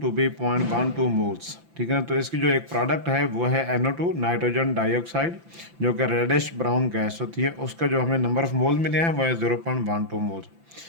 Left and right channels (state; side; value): late; left; 5.9 ms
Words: to be 0.12 moles. ठीक है, तो इसकी जो एक प्रोडक्ट है वो है NO2 नाइट्रोजन डाइऑक्साइड, जो कि रेडिश ब्राउन गैस होती है। उसका जो हमें नंबर ऑफ मोल मिले हैं वो है 0.12 मोल्स।